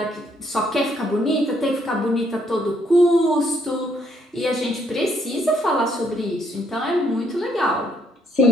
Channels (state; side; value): normal; both; correlation 0.69